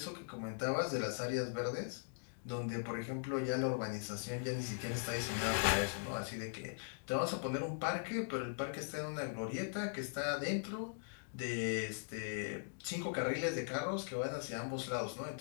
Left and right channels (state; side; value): silent; right; digital silence